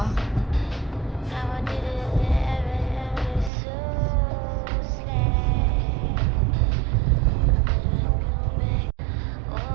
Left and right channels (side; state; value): left; drops out; at 3.5 s